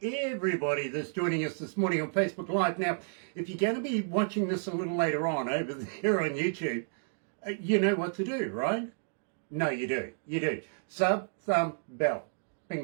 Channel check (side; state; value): left; silent; digital silence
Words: everybody that's joining us this morning on Facebook Live. Now, if you're going to be watching this a little later on over there on YouTube, you know what to do, right? No, you do. You do. Sub, thumb, bell.